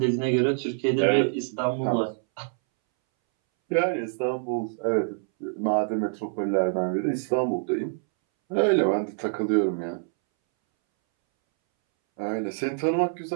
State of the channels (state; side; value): silent; left; 61 dB below the other